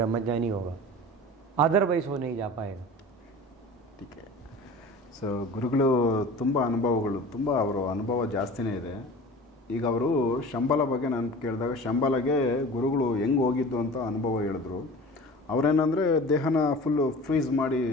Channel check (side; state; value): both; normal; correlation 0.39